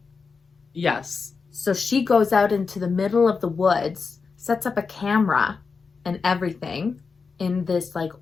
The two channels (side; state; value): right; quieter; 4.9 dB